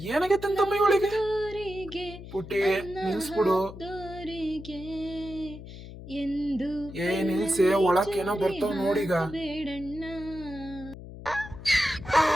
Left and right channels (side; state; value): left; noise; hum, 13 dB below the sound